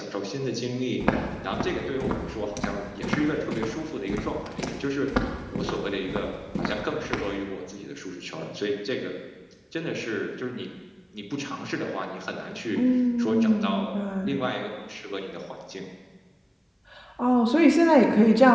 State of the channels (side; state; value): both; identical; correlation 1.00